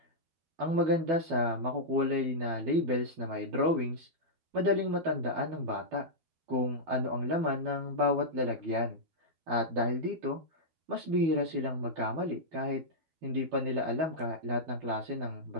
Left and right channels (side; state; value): left; late; 12 ms